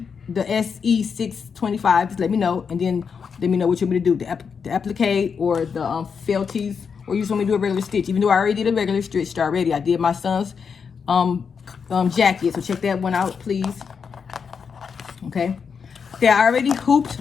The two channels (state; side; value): quieter; right; 6.2 dB